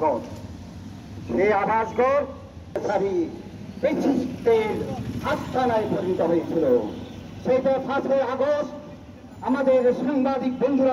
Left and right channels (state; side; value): identical; both; correlation 1.00